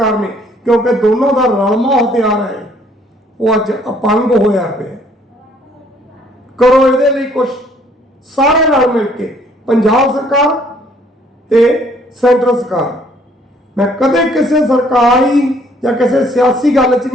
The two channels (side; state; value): both; normal; correlation 0.62